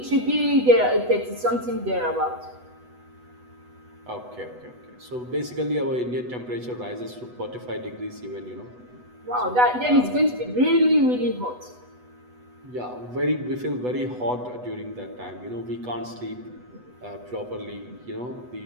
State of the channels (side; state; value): left; late; 8.1 ms